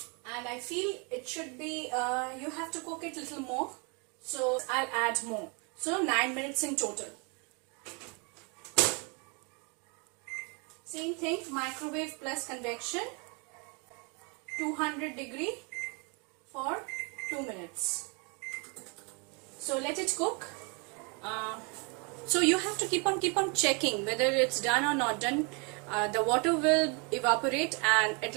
and I feel it should be, you have to cook it a little more. So I'll add more. So 9 minutes in total. Same thing, microwave plus convection, 200 degree for 2 minutes. So let it cook. So you have to keep on checking whether it's done or not done. The water will evaporate and it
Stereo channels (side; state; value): left; quieter; 33.2 dB